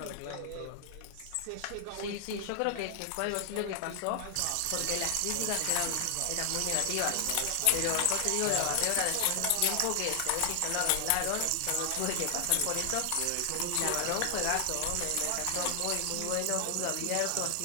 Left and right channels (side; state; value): both; different; correlation 0.00